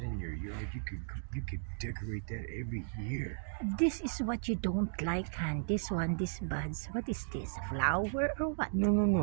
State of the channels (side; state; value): left; silent; digital silence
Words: in your yard, you could decorate that every year. This is what you don't like, Han. This buds. What is this? Flower or what? No.